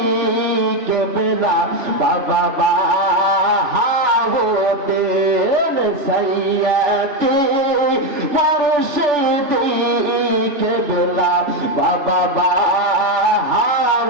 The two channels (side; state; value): left; late; 3.4 ms